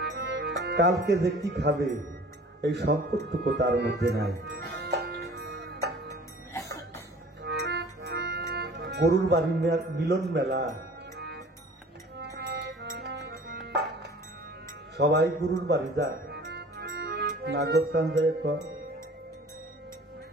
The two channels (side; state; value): both; normal; correlation 0.47